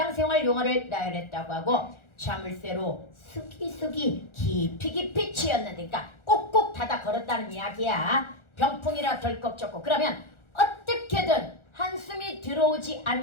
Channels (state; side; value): late; right; 1.4 ms